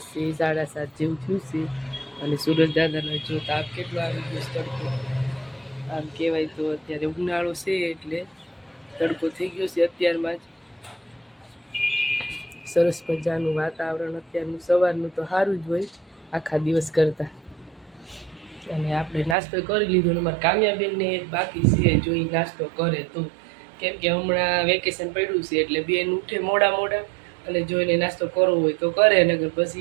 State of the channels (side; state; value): left; drops out; at 19.4 s